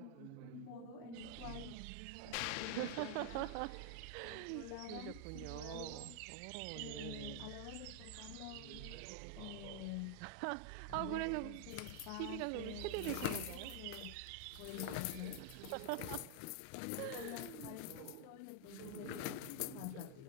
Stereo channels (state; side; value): different; both; correlation 0.00